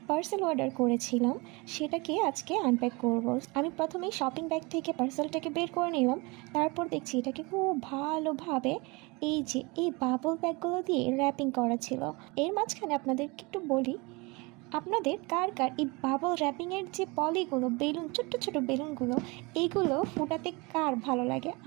পার্সেল অর্ডার করেছিলাম, সেটাকে আজকে আনপ্যাক করব। আমি প্রথমেই শপিং ব্যাগ থেকে পার্সেলটাকে বের করে নিলাম। তারপর দেখছি এটাকে খুব ভালোভাবে এই বাবল ব্যাগগুলো দিয়ে র্যাপিং করা ছিল। এর মাঝখানে আপনাদেরকে একটু বলি, আপনাদের কার কার এই বাবল র্যাপিংয়ের যে পলিগুলো, বেলুন, ছোট্ট ছোট বেলুনগুলো, এইগুলো ফুটাতে কার ভালো লাগে?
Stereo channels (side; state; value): left; quieter; 26.6 dB